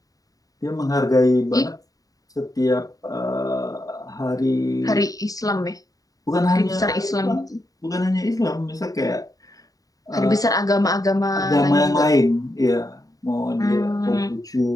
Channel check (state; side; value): late; right; 0.18 ms